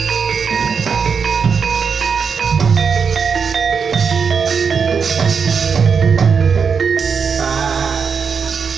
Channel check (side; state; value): left; quieter; 6.0 dB